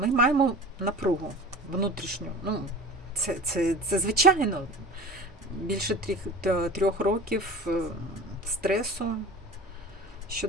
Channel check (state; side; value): normal; both; correlation 0.37